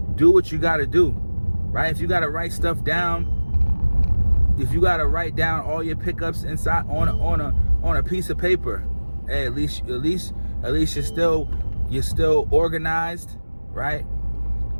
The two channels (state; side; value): inverted; both; correlation -1.00